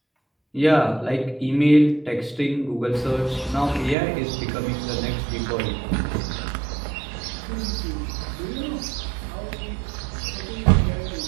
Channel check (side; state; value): left; drops out; at 4.0 s